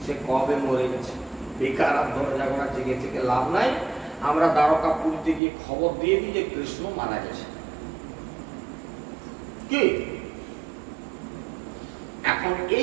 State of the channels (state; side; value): drops out; left; at 5.4 s